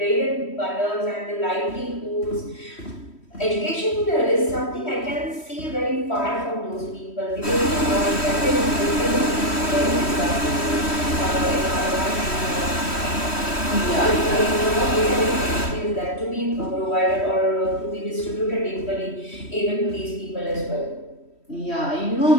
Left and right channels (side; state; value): right; late; 3.1 ms